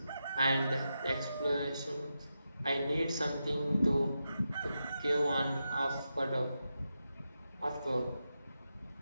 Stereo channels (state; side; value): inverted; both; correlation -0.88